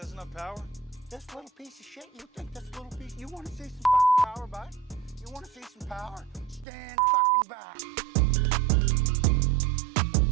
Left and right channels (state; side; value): drops out; left; at 6.7 s